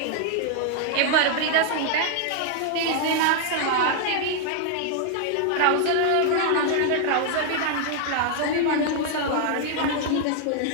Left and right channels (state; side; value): different; both; correlation 0.00